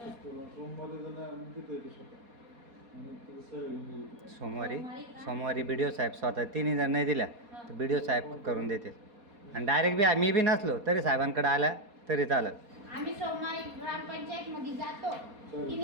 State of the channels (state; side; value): late; left; 4.2 ms